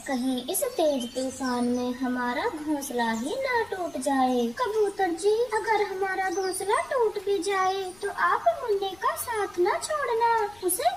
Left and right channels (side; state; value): left; noise; rumble, 25 dB below the sound